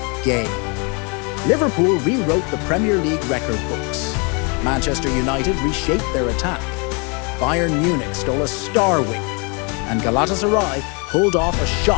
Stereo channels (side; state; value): right; quieter; 33.0 dB